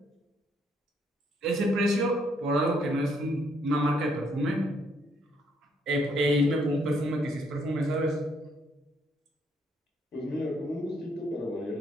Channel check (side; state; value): both; normal; correlation 0.70